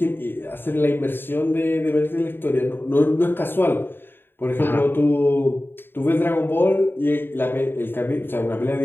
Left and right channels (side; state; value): right; late; 0.10 ms